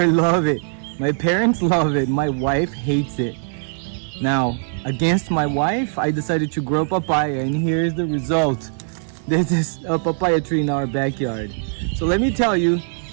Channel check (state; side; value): silent; left; digital silence